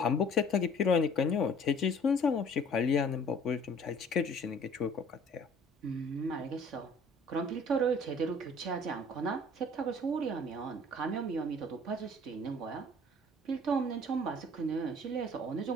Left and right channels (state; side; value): normal; both; correlation 0.52